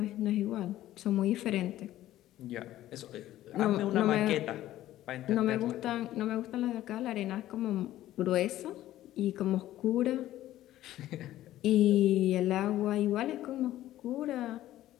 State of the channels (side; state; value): right; quieter; 14.0 dB